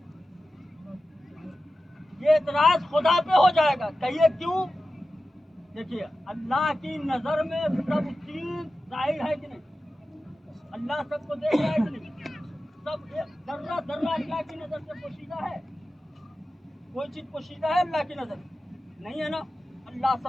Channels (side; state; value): both; normal; correlation 0.94